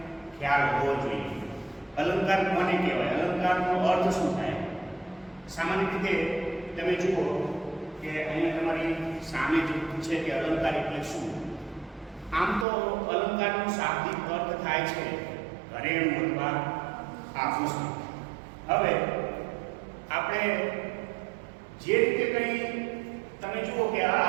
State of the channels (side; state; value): left; drops out; at 12.7 s